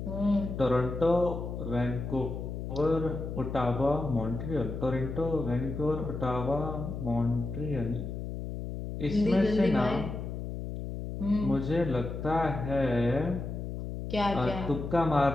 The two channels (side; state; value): left; noise; hum, 6 dB below the sound